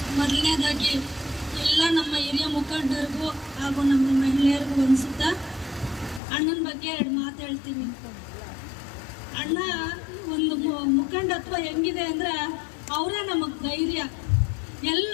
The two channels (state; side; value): drops out; right; at 6.2 s